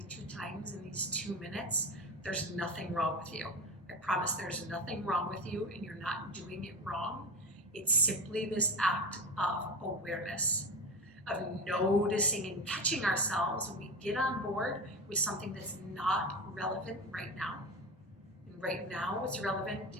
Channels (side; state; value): both; normal; correlation 0.25